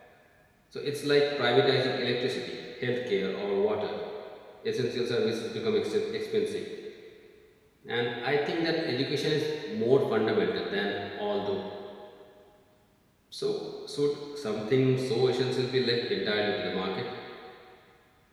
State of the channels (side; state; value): both; identical; correlation 1.00